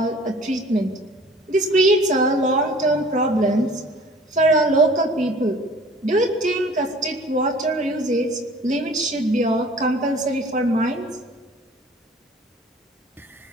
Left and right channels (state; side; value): normal; both; correlation 0.49